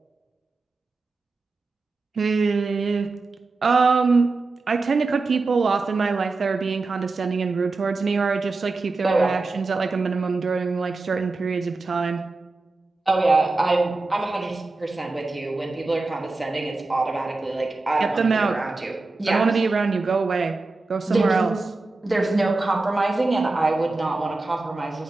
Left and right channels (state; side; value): quieter; left; 3.5 dB